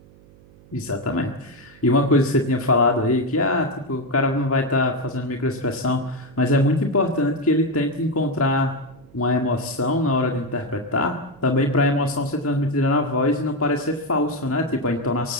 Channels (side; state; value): right; noise; hum, 25 dB below the sound